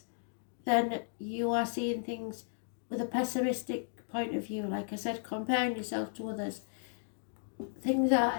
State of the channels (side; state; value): right; silent; digital silence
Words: then you are seeing things with a pessimistic point of view. Like I said, comparing yourself to others. Things